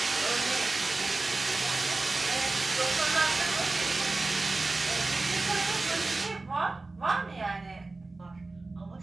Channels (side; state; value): left; quieter; 3.4 dB